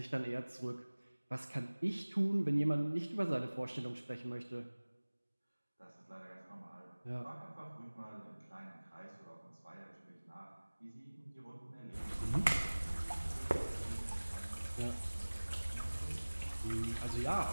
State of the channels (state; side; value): inverted; both; correlation -1.00